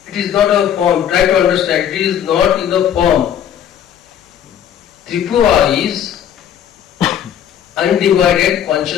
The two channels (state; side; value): quieter; right; 9.7 dB